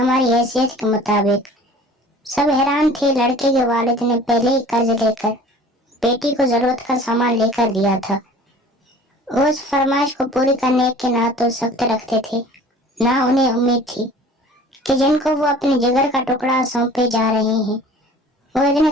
حیثیت کے مطابق۔ سب حیران تھے۔ لڑکے کے والد نے پہلے ہی قرض لے کر بیٹی کو ضرورت کا سامان لے کر دیا تھا۔ وہ اس فرمائش کو پوری کرنے کے نہ تو سخت رکھتے تھے، نہ انہیں امید تھی کہ جن کو وہ اپنے جگر کا ٹکڑا سونپے جا رہے ہیں وہ اتنے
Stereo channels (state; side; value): normal; both; correlation 0.46